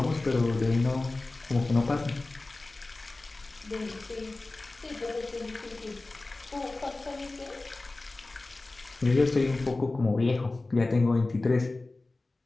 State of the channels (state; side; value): quieter; right; 3.2 dB